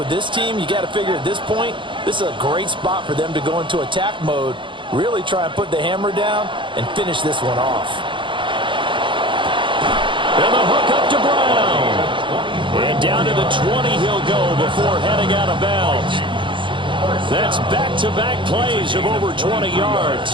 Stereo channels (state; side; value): late; left; 0.24 ms